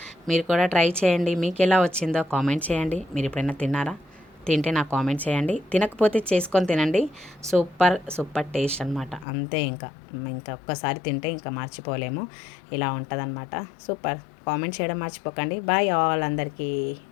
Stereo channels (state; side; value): drops out; right; at 9.2 s